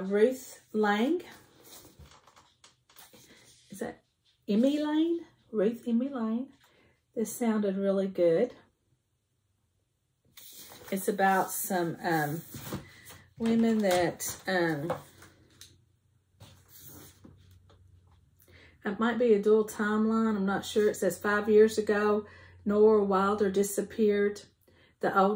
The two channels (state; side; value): identical; both; correlation 1.00